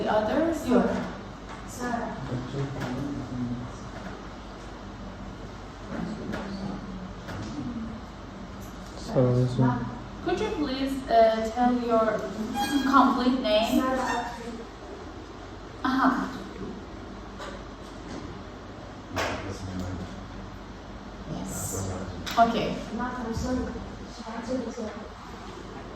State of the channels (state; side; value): identical; both; correlation 1.00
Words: others? Your Sarah. Could you please tell your complete name? Uh-huh. Yes. Okay.